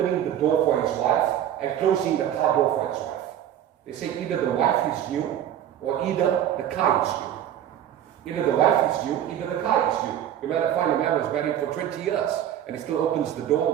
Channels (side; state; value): left; quieter; 10.8 dB